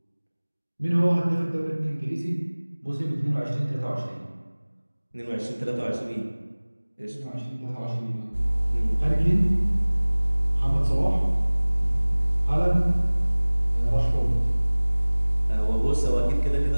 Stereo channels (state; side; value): inverted; both; correlation -1.00